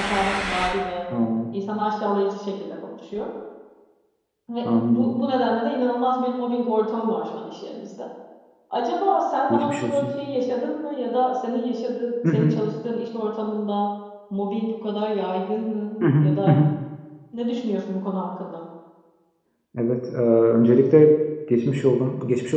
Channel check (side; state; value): both; identical; correlation 1.00